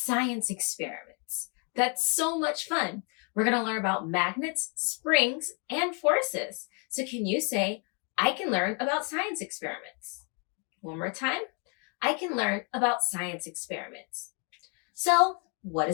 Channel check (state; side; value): quieter; right; 36.5 dB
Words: experiments. That's so much fun. We're going to learn about magnets, springs, and forces. So can you say, I can learn about science experiments? One more time. I can learn about science experiments. So what